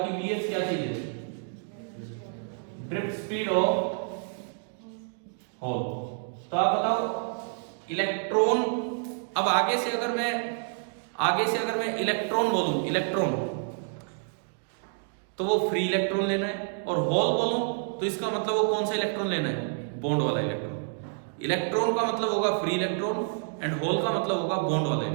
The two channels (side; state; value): left; silent; 59 dB below the other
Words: VH क्या चीज है, ड्रिफ्ट स्पीड ऑफ होल। तो आप बताओ इलेक्ट्रॉन, अब आगे से अगर मैं इलेक्ट्रॉन बोलूं, इलेक्ट्रॉन, तो वो फ्री इलेक्ट्रॉन लेना है, और होल बोलूं तो इसका मतलब वो कौन सा इलेक्ट्रॉन लेना है, बॉन्ड वाला इलेक्ट्रॉन। इलेक्ट्रॉन का मतलब होगा फ्री इलेक्ट्रॉन, एंड होल का मतलब होगा बॉन्ड वाला